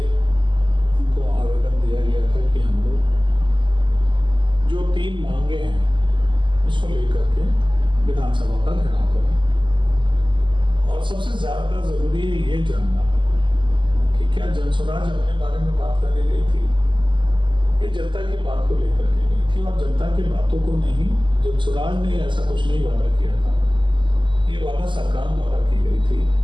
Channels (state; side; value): late; left; 0.24 ms